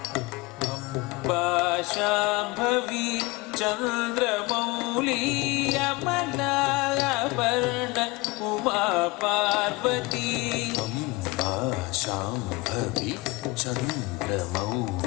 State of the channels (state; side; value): quieter; right; 23.5 dB